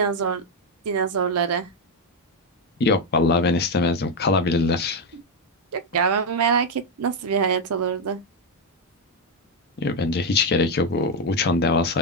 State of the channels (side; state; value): both; normal; correlation 0.04